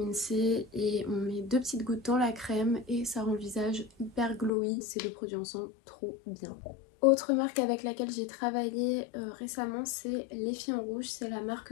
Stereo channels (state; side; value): drops out; right; at 4.5 s